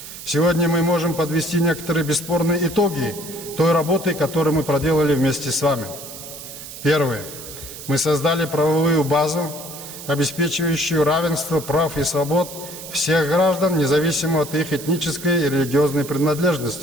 Сегодня мы можем подвести некоторые бесспорные итоги той работы, которую мы проделали вместе с вами. Первое. Мы создали правовую базу, обеспечивающую равенство прав и свобод всех граждан, независимо от их этнической и религиозной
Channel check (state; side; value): noise; right; hiss, 12 dB below the sound